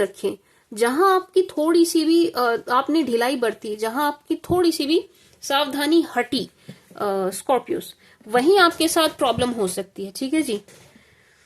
जहां आपकी थोड़ी सी भी आपने ढिलाई बरती, जहां आपकी थोड़ी सी भी सावधानी हटी स्कॉर्पियोज, वहीं आपके साथ प्रॉब्लम हो सकती है, ठीक है जी।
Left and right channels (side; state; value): both; identical; correlation 1.00